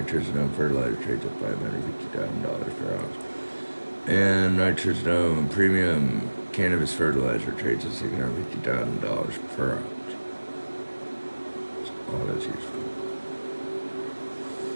fertilizer trades at $550,000 per ounce. And nitrogen premium cannabis fertilizer trades at $650,000 per ounce. All that's useful.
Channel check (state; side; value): inverted; both; correlation -1.00